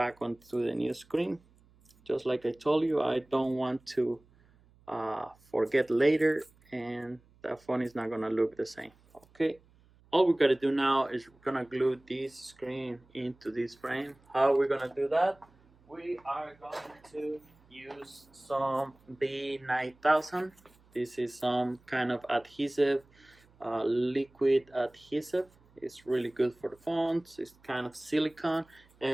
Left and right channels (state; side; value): noise; right; hum, 30 dB below the sound